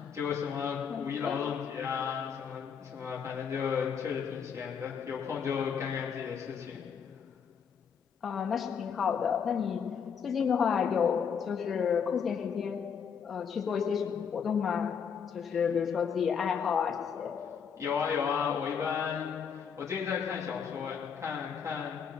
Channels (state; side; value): quieter; right; 6.9 dB